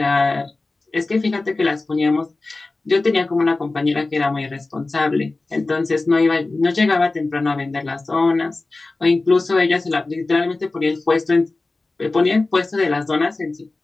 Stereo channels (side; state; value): right; quieter; 3.3 dB